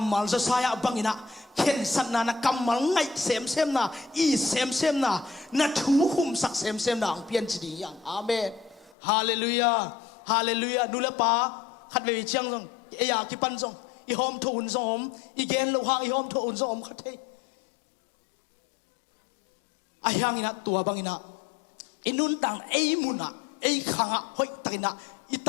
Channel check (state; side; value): drops out; right; at 9.0 s